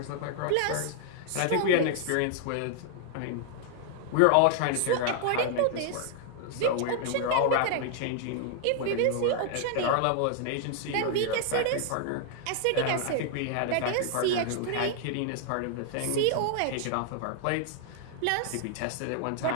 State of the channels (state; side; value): different; both; correlation 0.00